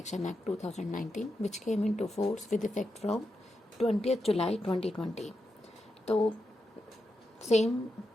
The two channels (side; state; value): both; normal; correlation 0.87